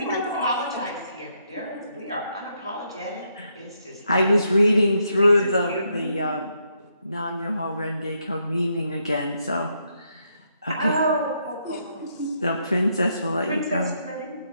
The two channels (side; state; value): both; inverted; correlation -0.77